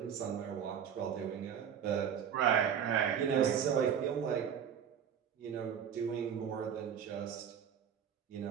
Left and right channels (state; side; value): quieter; left; 8.2 dB